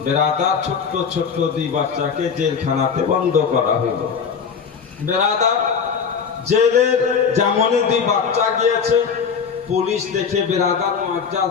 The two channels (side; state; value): right; quieter; 6.3 dB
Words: বেরাদার ছোট্ট ছোট্ট দুই বাচ্চাকে জেলখানাতে বন্ধ করা হইল। বেরাদার জেলের যেমনই দুই বাচ্চা গিয়েছে, পুলিশ দেখে বেরাদার মুআজ্জাজ